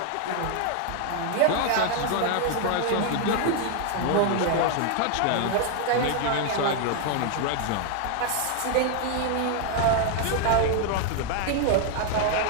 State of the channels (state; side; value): different; both; correlation 0.00